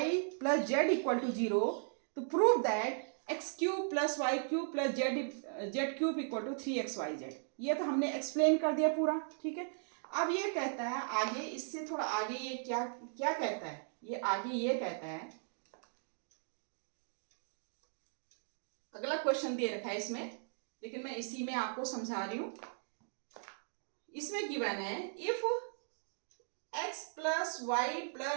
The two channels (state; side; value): silent; left; digital silence